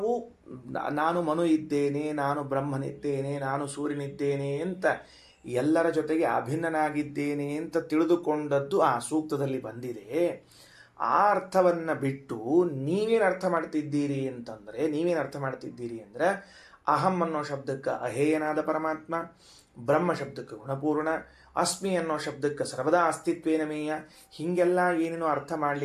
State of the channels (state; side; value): identical; both; correlation 1.00